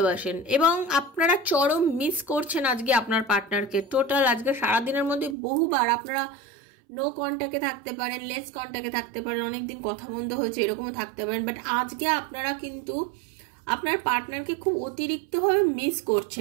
এবং আপনারা চরম মিস করছেন আজকে আপনার পার্টনারকে। টোটাল আজকে সারাদিনের মধ্যে বহুবার আপনারা নো কন্ট্যাক্টে থাকতে পারেন, লেস কন্ট্যাক্টে থাকতে পারেন, অনেকদিন কথা বন্ধ হয়েছে এরকমও থাকতে পারেন, বাট আজকে আপনারা কিন্তু আপনার পার্টনারকে খুব অতিরিক্তভাবে মিস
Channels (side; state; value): left; drops out; at 5.4 s